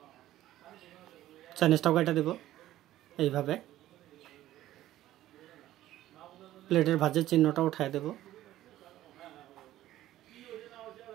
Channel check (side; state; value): left; quieter; 14.1 dB